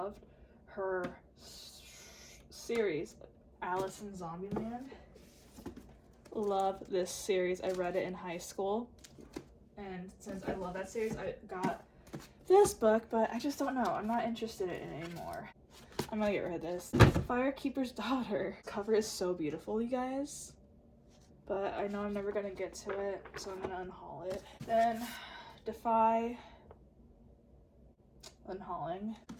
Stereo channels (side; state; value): both; identical; correlation 1.00